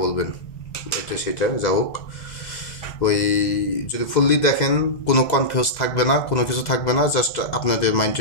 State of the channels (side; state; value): right; late; 2.0 ms